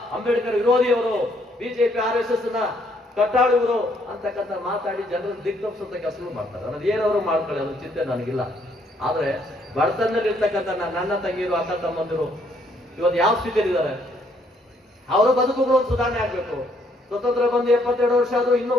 ಅಂಬೇಡ್ಕರ್ ವಿರೋಧಿಯವರು, BJP RSS ನ ಕಟ್ಟಾಳುವರು ಅಂತಕ್ಕಂಥ ಮಾತಾಡಿ ಜನರನ್ನು ದಿಗ್ತಪ್ಪಿಸುವಂತ ಕೆಲಸ ಮಾಡ್ತಾರೆ. ಅನ್ನೋದು ಏನವರು ಮಾಡ್ಕೊಳ್ಳಿ, ಅದ್ರ ಚಿಂತೆ ನನಗಿಲ್ಲ. ಆದ್ರೆ ಬಡತನದಲ್ಲಿ ಇರ್ತಕ್ಕಂಥ ನನ್ನ ತಂಗಿರು, ಅಕ್ಕ ತಮ್ಮಂದಿರು ಇವತ್ತು ಯಾವ ಸ್ಥಿತಿಯಲ್ಲಿದ್ದಾರೆ? ಅವರ ಬದುಕುಗಳು ಸುಧಾರಣೆ ಆಗ್ಬೇಕು. ಸ್ವತಂತ್ರ ಬಂದು 72 ವರ್ಷ ಆದ್ರೂ ಇನ್ನೂ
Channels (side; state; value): both; normal; correlation 0.69